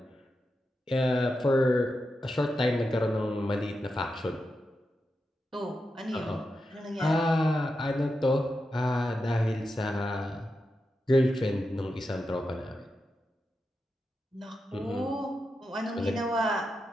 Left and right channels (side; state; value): both; normal; correlation 0.88